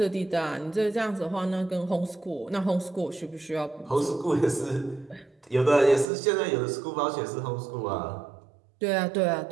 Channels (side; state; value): left; drops out; at 6.1 s